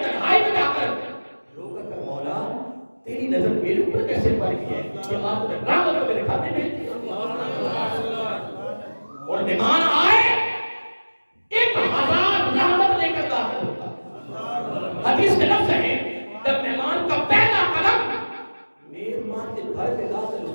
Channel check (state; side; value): inverted; both; correlation -1.00